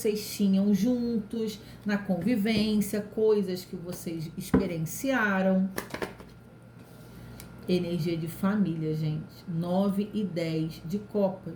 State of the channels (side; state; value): both; identical; correlation 1.00